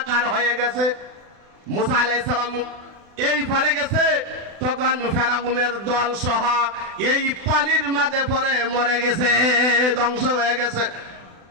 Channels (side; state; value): left; late; 36 ms